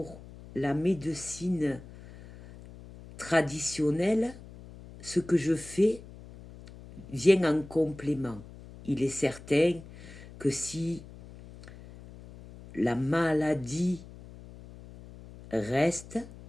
la médecine traditionnelle, ce que je fais vient en complément. Il est certain que si la maladie reste,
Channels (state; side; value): noise; left; hum, 17 dB below the sound